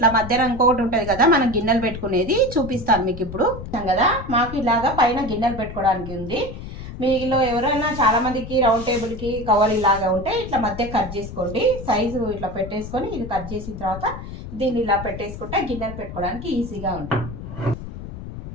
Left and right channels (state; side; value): noise; left; rumble, 10 dB below the sound